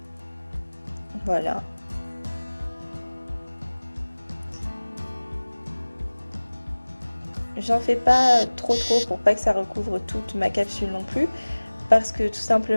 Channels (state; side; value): inverted; both; correlation -1.00